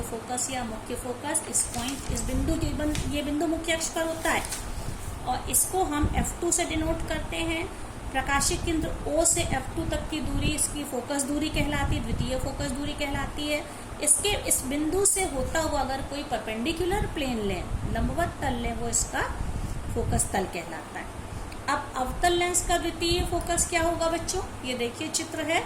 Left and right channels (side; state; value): both; identical; correlation 1.00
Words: फोकस या मुख्य फोकस। इस पॉइंट, इस बिंदु ये बिंदु मुख्य अक्ष पर होता है और इसको हम F2 से डिनोट करते हैं। प्रकाशिक केंद्र O से F2 तक की दूरी इसकी फोकस दूरी कहलाती है, द्वितीय फोकस दूरी कहलाती है। इसके इस बिंदु से होता हुआ अगर कोई परपेंडिकुलर प्लेन लें, लंबवत तल लें, वो इसका फोकस तल कहलाता है। अब अवतल लेंस का द्वितीय फोकस क्या होगा बच्चों? ये देखिए चित्र है,